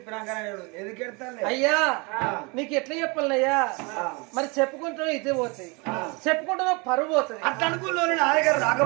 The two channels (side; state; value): left; quieter; 29.0 dB